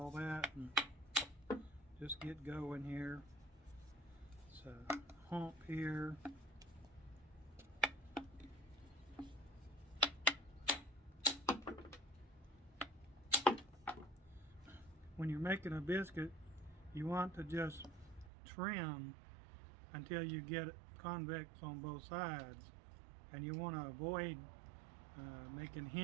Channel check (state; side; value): drops out; left; at 18.3 s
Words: that, and just get going here. So hump here. When you're making a biscuit, you want to just trim until you get it convex on both sides, and you want to avoid making